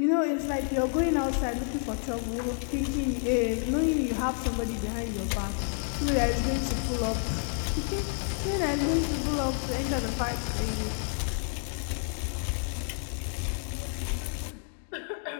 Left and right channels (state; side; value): silent; right; 56 dB below the other